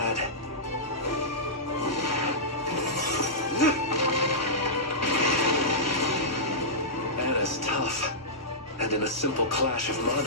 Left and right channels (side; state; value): both; normal; correlation -0.14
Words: Anna's tough, and in a simple clash of